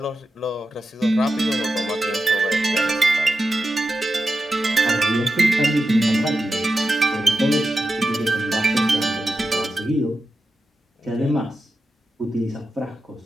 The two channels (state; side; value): normal; both; correlation 0.90